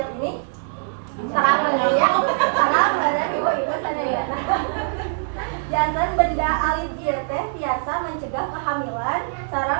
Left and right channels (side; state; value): left; silent; digital silence